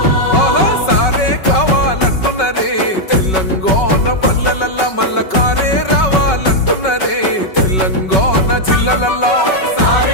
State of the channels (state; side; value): late; right; 5.3 ms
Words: సారే కావాలంటున్నరే తెలంగాణ పల్లెలల్లా మల్ల కారే రావాలంటున్నరే తెలంగాణ జిల్లలల్లో.